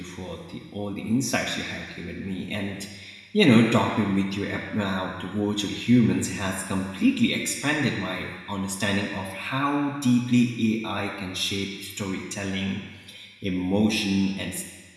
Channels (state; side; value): identical; both; correlation 1.00